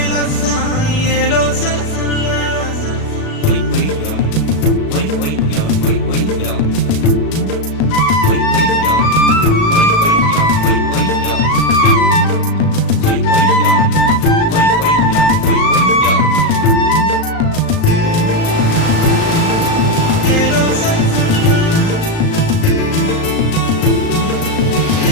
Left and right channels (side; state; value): right; late; 37 ms